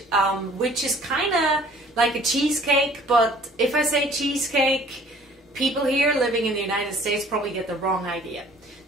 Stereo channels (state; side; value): normal; both; correlation 0.53